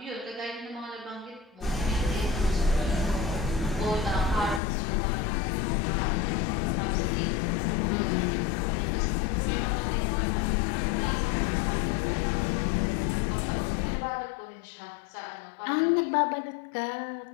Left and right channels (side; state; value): right; drops out; at 4.6 s